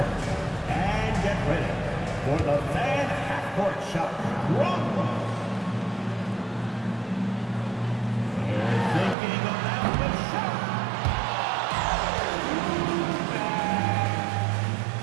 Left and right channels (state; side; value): drops out; left; at 9.2 s